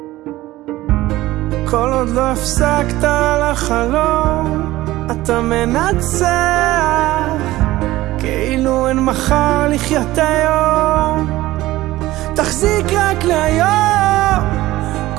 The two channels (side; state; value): left; quieter; 17.0 dB